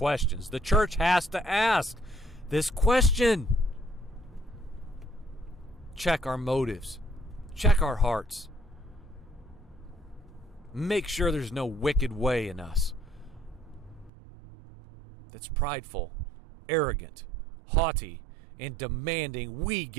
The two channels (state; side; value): drops out; left; at 14.1 s